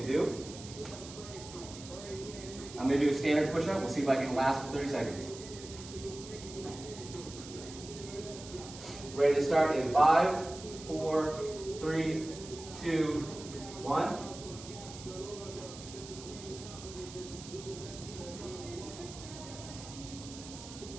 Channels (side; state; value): right; noise; hiss, 14 dB below the sound